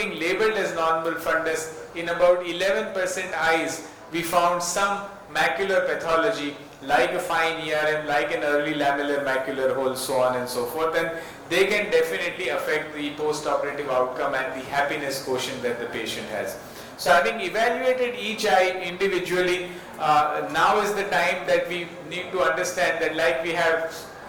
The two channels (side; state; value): both; identical; correlation 1.00